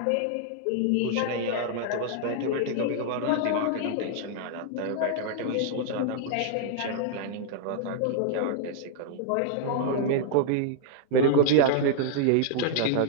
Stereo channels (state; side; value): different; both; correlation -0.01